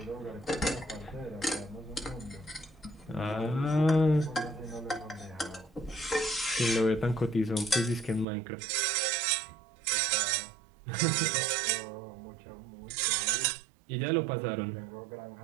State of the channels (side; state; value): left; drops out; at 8.2 s